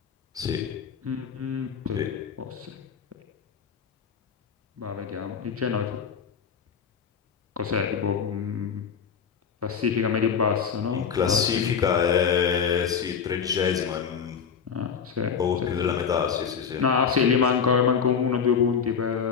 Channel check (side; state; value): right; quieter; 6.8 dB